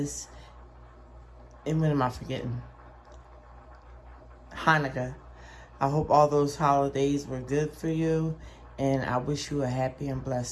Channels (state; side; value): identical; both; correlation 1.00